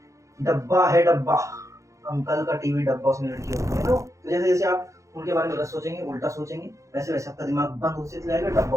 डब्बा है डब्बा, अंकल का टीवी डब्बा, उसमें लड़की होती है ना। तो जैसे जैसे आप उनके बारे में गलत सोचेंगे, उल्टा सोचेंगे, वैसे वैसे आपका दिमाग बंद होते चला जाएगा,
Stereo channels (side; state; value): left; late; 0.15 ms